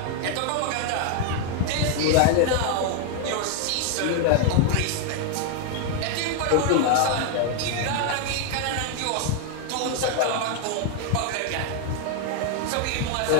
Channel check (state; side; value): different; both; correlation 0.00